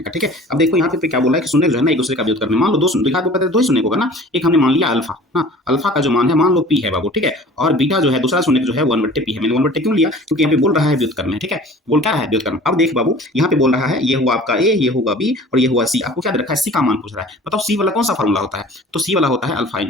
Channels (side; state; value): both; normal; correlation 0.45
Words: का, ठीक है। अब देखो यहाँ पे क्या बोला है कि शून्य जो है ना एक दूसरे का व्युत्क्रम में, मान लो दो द्विघात बहुपद है, 2 ही शून्य होगा ना, एक हमने मान लिया अल्फा ना, अल्फा का जो मान है मान लो पी है बाबू, ठीक है। और बीटा जो है दूसरा शून्य जो है 1/p है, मैंने 1/p क्यों लिया, क्योंकि यहाँ पे बोल रहा है व्युत्क्रम में, ठीक है, बोल क्या रहा है व्युत्क्रम। अब देख बाबू यहाँ पे बोल रहा है ये हुआ आपका ए, ये होगा बी और ये हुआ सी, आपको क्या दे रखा है, सी का मान पूछ रहा है। बताओ सी वाला कौन सा फॉर्मूला होता है, तो सी वाला होता है अल्फा